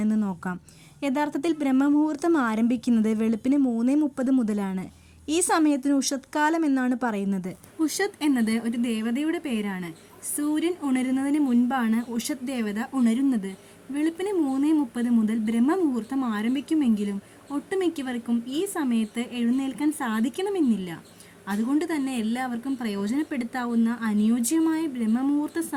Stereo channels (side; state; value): both; identical; correlation 1.00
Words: നോക്കാം. യഥാർത്ഥത്തിൽ ബ്രഹ്മമുഹൂർത്തം ആരംഭിക്കുന്നത് വെളുപ്പിന് 3:30 മുതലാണ്. ഈ സമയത്തിന് ഉഷത് കാലം എന്നാണ് പറയുന്നത്. ഉഷത് എന്നത് ഒരു ദേവതയുടെ പേരാണ്. സൂര്യൻ ഉണരുന്നതിന് മുൻപാണ് ഉഷത് ദേവത ഉണരുന്നത്. വെളുപ്പിന് 3:30 മുതൽ ബ്രഹ്മമുഹൂർത്തം ആരംഭിക്കുമെങ്കിലും ഒട്ടുമിക്കവർക്കും ഈ സമയത്ത് എഴുന്നേൽക്കാൻ സാധിക്കണമെന്നില്ല. അതുകൊണ്ട് തന്നെ എല്ലാവർക്കും പ്രയോജനപ്പെടുത്താവുന്ന അനുയോജ്യമായ ബ്രഹ്മമുഹൂർത്ത